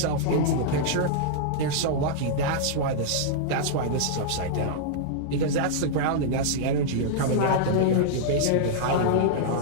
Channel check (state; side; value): different; both; correlation -0.02